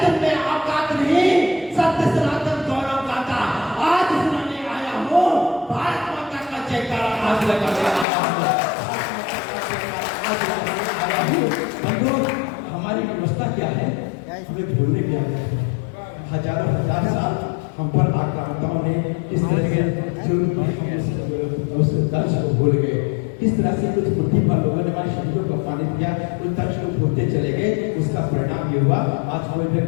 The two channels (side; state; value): right; drops out; at 8.1 s